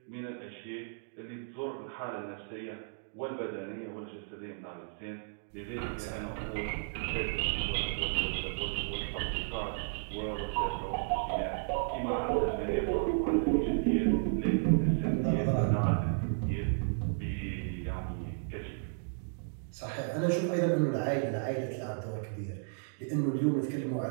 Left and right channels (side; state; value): left; silent; digital silence